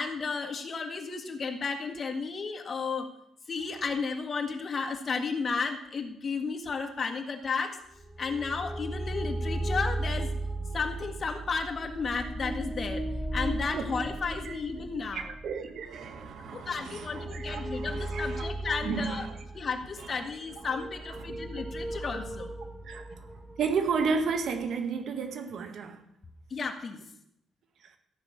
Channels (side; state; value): both; normal; correlation 0.79